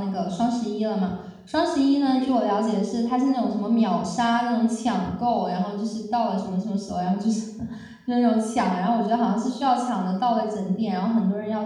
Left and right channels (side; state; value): both; identical; correlation 1.00